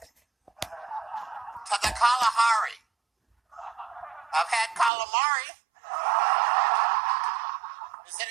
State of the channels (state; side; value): drops out; left; at 4.9 s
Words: To the Kalahari. I've had calamari. Is it